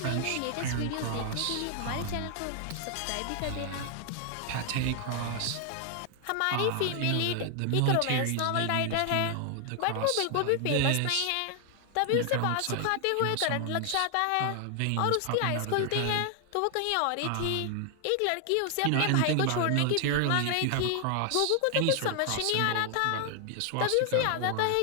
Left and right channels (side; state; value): both; different; correlation 0.00